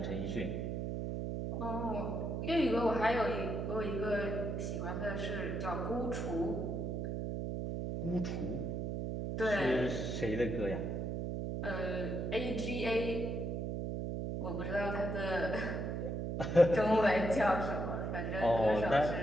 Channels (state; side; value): noise; right; hum, 2 dB below the sound